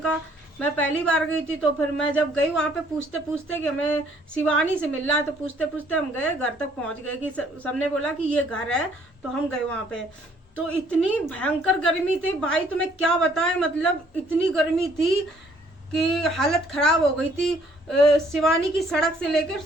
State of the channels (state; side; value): normal; both; correlation 0.63